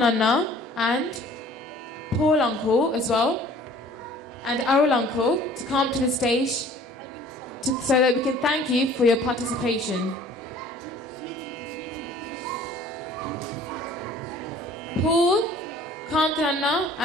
and Paul Uncle as well, and Arul Uncle to come to the stage so that we can thank you for your participation. Paul, Kantananna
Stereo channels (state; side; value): normal; both; correlation 0.51